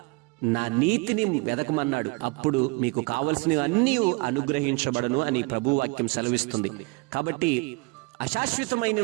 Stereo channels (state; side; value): quieter; left; 28.1 dB